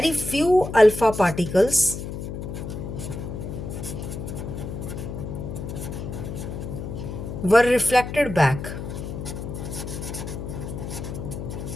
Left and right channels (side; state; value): left; noise; hum, 7 dB below the sound